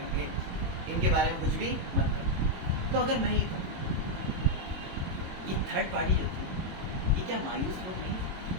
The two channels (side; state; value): left; late; 22 ms